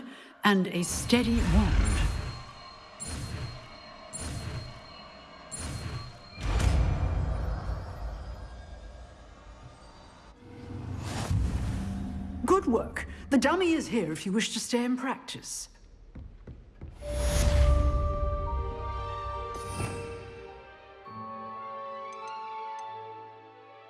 and a steady wand. Good work. The dummy is here if you wish to stay and practice.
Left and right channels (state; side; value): identical; both; correlation 1.00